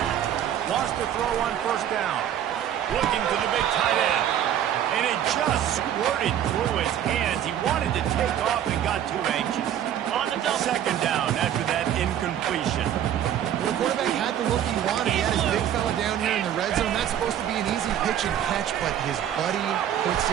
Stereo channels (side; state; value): left; quieter; 10.4 dB